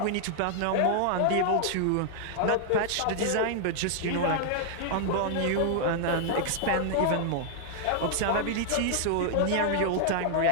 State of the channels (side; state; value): both; different; correlation -0.01